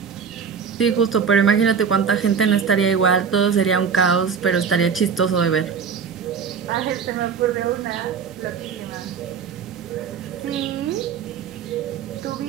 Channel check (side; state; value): left; quieter; 6.5 dB